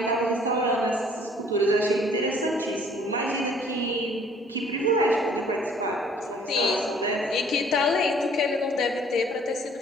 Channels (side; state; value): both; normal; correlation 0.57